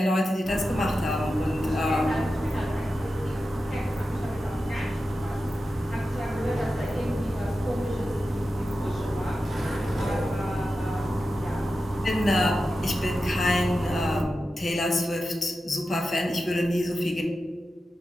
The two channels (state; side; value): normal; both; correlation 0.92